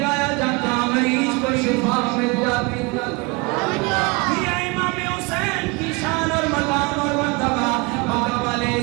جاتا، مریض کو شفا مل جاتی، یہ امام حسین کی شان اور مقام اور مرتبہ، مکہ والے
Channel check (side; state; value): left; quieter; 27.5 dB